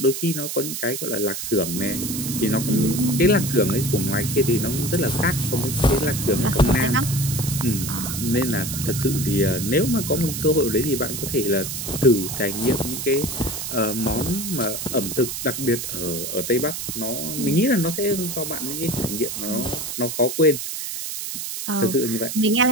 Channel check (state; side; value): noise; right; hiss, 5 dB below the sound